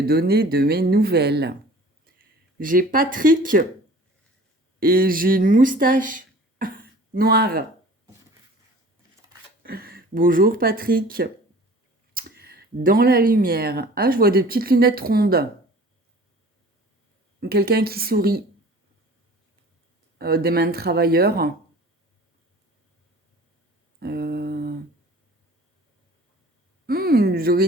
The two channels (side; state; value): both; normal; correlation 0.46